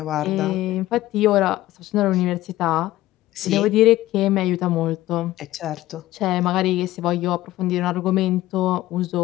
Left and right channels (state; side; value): quieter; right; 15.8 dB